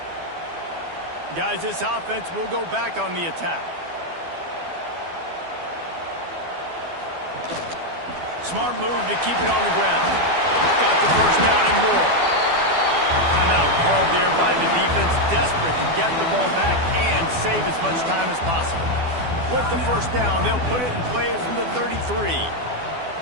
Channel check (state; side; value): late; left; 12 ms